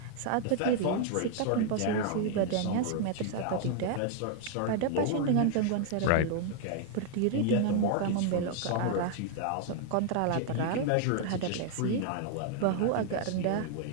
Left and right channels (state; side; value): different; both; correlation 0.00